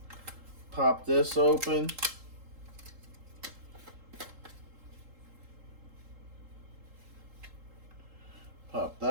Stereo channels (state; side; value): late; left; 3.8 ms